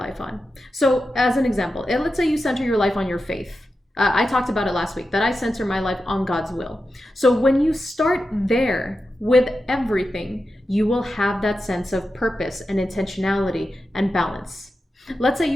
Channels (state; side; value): normal; both; correlation 0.90